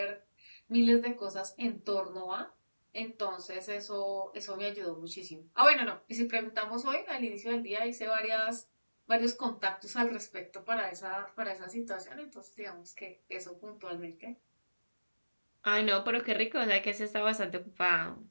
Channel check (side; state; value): both; inverted; correlation -1.00